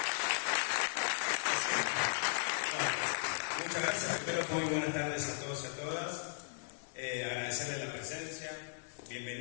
Muchas gracias, primero muy buenas tardes a todos y a todas. Agradecerles la presencia.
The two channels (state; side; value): silent; right; digital silence